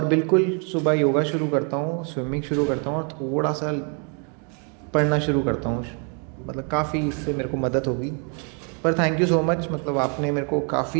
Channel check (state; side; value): quieter; left; 38.3 dB